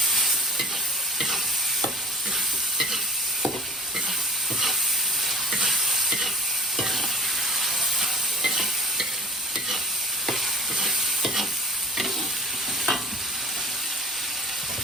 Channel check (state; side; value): noise; right; rumble, 30 dB below the sound